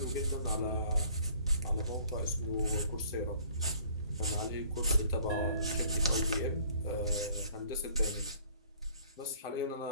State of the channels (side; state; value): both; inverted; correlation -0.56